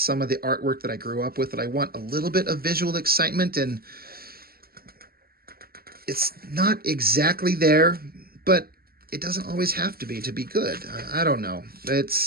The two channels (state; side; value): late; left; 0.44 ms